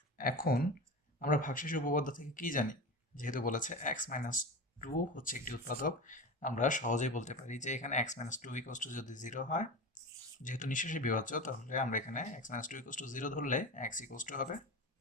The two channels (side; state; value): both; normal; correlation 0.27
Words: এখন আমরা ভাগশেষ উপপাদ্য থেকে কি জানি? যেহেতু বলেছে x-2 হচ্ছে একটি উৎপাদক, আমরা সহজেই বলতে পারি যে এখানে x-2 ইকুয়ালস টু যদি 0 হয়, যেহেতু নিঃশেষে বিভাজ্য, তাহলে আমরা এখানে x-2 ইকুয়ালস টু 0 ধরলে x ইকুয়ালস টু হবে